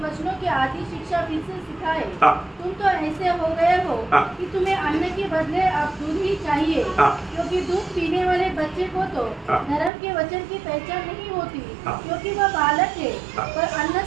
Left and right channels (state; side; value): drops out; left; at 9.9 s